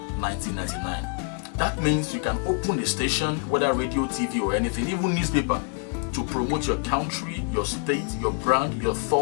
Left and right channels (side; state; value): right; quieter; 39.8 dB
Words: 1999. That means you can open the station, whether radio, TV or anything, even newspaper, to promote your country, your state, your brand, your